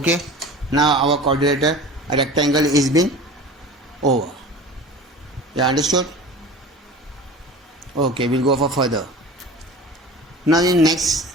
now our quadrilateral rectangle is been over. You understood? Okay, we'll go for further. Now in next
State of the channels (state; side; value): normal; both; correlation 0.38